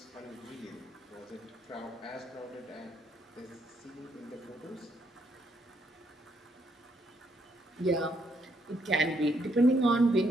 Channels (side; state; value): both; normal; correlation 0.74